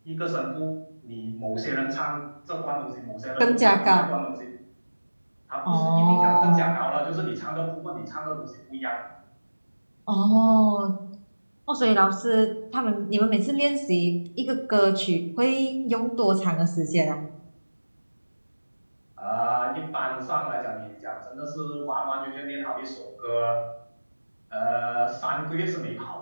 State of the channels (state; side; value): inverted; both; correlation -1.00